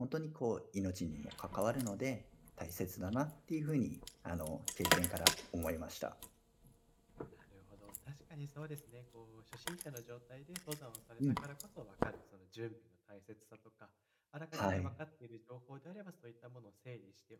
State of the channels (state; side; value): identical; both; correlation 1.00